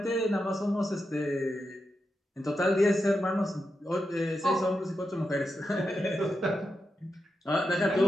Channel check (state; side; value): normal; both; correlation 0.87